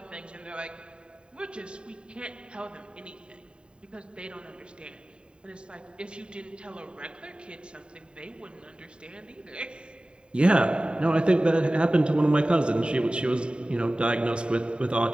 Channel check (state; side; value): late; left; 0.051 ms